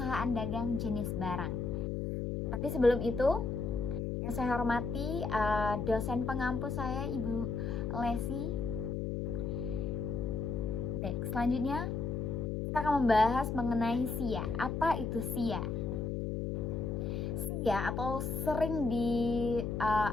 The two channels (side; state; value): left; noise; hum, 2 dB below the sound